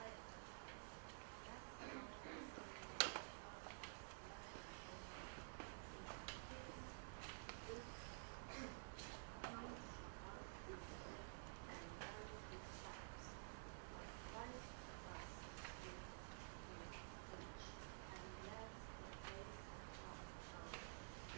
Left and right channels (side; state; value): left; silent; digital silence